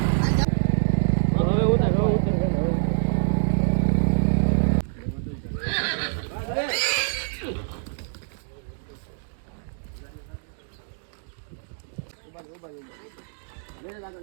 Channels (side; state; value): left; silent; digital silence